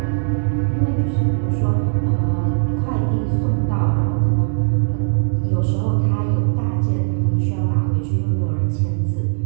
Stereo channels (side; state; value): left; silent; digital silence